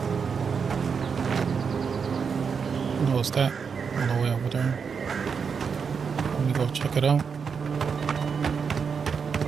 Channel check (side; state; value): left; quieter; 6.1 dB